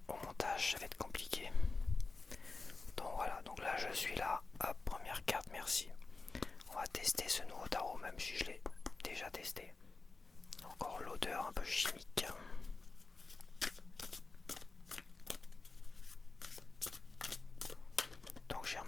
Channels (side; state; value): right; quieter; 3.7 dB